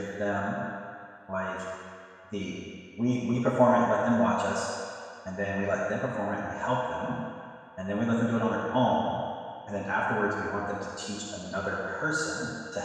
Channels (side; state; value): both; identical; correlation 1.00